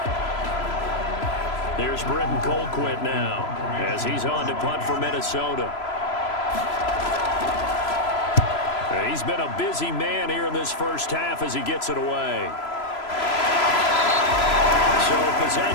Here's Britton Colquitt now as he's on to punt for Minnesota. He's been a busy man here in this first half as he gets it away. So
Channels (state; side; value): late; right; 3.0 ms